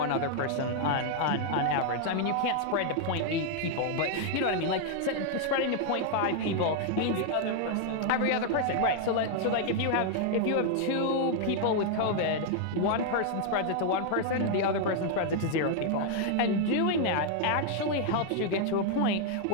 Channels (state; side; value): different; both; correlation 0.00